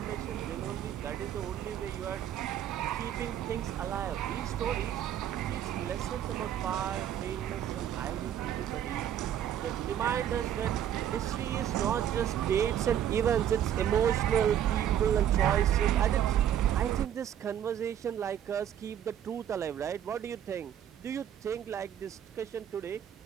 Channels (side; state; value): left; quieter; 10.2 dB